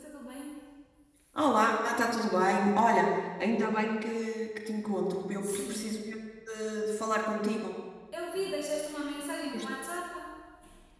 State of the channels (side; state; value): both; identical; correlation 1.00